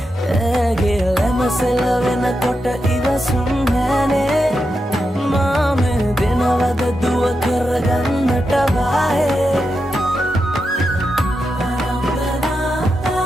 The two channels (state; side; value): normal; both; correlation 0.87